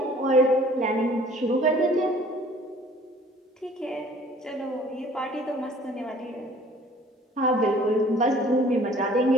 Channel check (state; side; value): normal; both; correlation 0.53